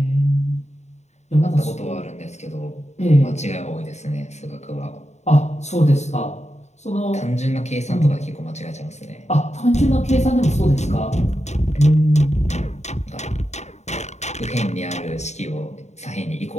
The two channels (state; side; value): late; right; 0.33 ms